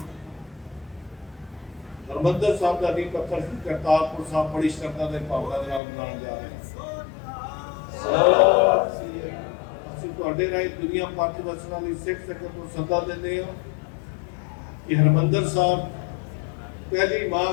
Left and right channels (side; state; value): right; drops out; at 5.8 s